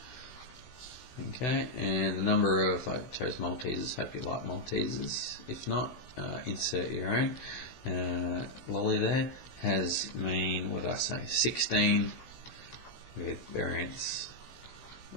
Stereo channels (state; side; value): late; right; 16 ms